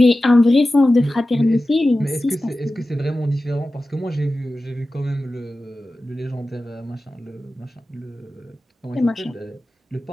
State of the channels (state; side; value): normal; both; correlation 0.95